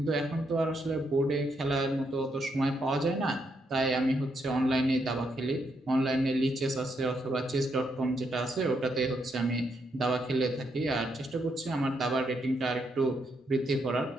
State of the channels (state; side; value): normal; both; correlation 0.78